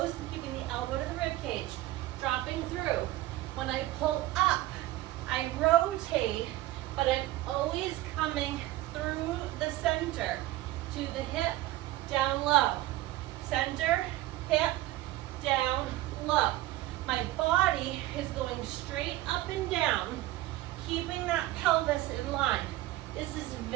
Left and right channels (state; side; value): quieter; left; 16.5 dB